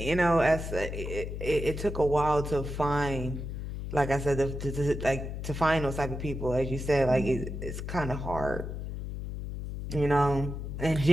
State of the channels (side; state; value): left; noise; hum, 6 dB below the sound